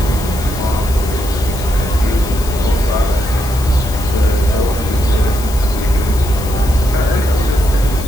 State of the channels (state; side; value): noise; left; hiss, 13 dB below the sound